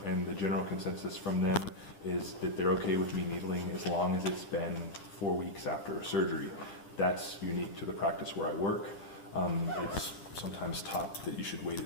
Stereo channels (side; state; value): right; late; 10 ms